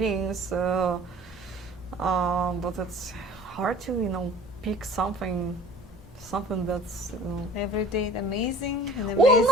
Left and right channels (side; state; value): both; normal; correlation 0.46